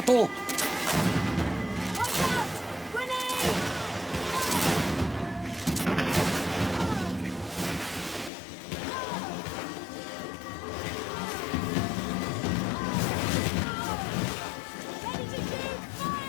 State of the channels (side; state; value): right; drops out; at 8.3 s